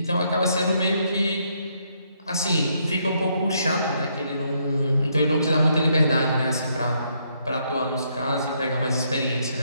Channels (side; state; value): both; inverted; correlation -0.73